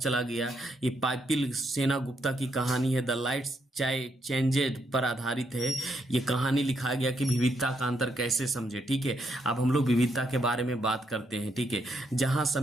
गया। ये पाइपिल सेना गुप्ता की कहानी है, द लाइट्स चेंजेड पर आधारित है। ये कहानी लिखा गया कि विविधता का अंतर कैसे समझे। ठीक है, अब हम लोग विविधता के बारे में बात करते हैं। ठीक है, जहां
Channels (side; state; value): both; normal; correlation 0.77